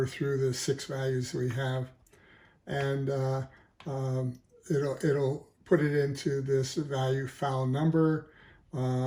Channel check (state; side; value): identical; both; correlation 1.00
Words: through the 6 values we have, and it'll put it into this value file number,